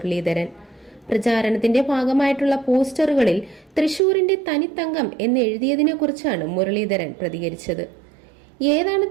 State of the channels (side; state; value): left; drops out; at 4.0 s